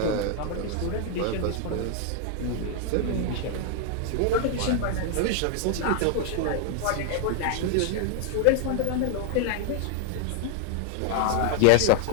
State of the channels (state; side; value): different; both; correlation 0.00